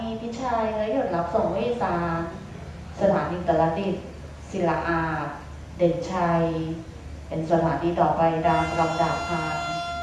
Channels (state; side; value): identical; both; correlation 1.00